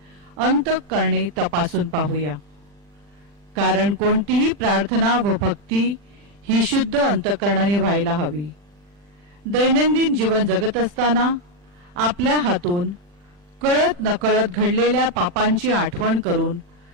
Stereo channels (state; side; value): late; left; 40 ms